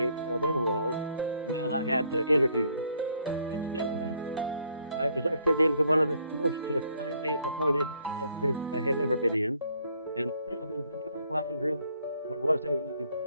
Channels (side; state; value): both; inverted; correlation -0.67